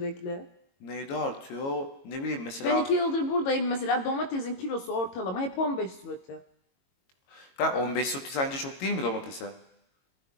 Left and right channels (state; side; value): late; right; 22 ms